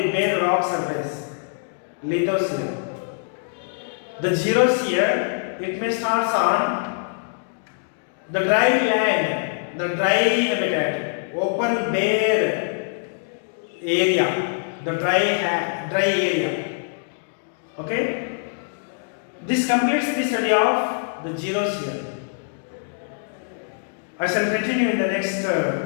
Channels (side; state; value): right; silent; digital silence